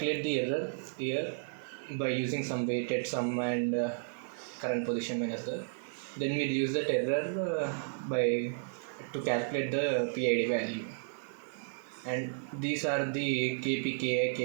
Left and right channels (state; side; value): silent; left; digital silence